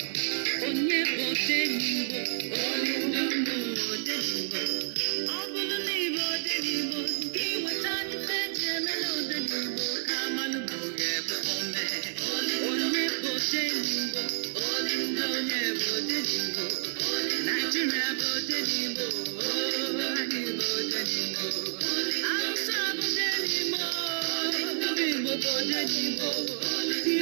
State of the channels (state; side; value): silent; left; digital silence